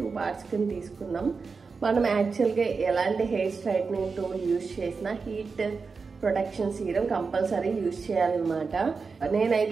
పార్ట్స్ కింద తీసుకున్నాం. మనం యాక్చువల్గా ఎలాంటి హెయిర్ స్ట్రైట్నింగ్ టూల్ యూజ్ చేసినా heat protection serum compulsory use చేయాలన్నమాట.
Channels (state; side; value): quieter; left; 4.8 dB